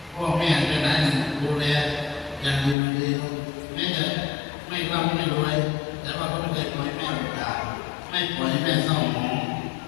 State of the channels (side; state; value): right; drops out; at 2.8 s